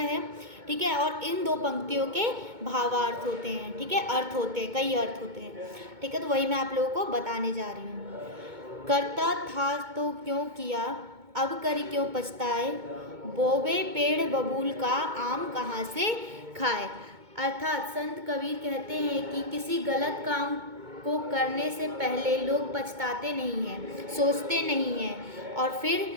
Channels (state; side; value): late; left; 2.2 ms